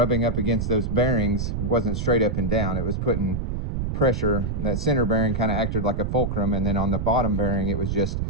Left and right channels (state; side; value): noise; right; rumble, 1 dB below the sound